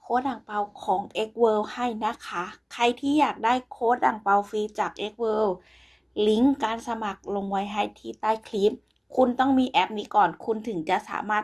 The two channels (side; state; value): both; identical; correlation 1.00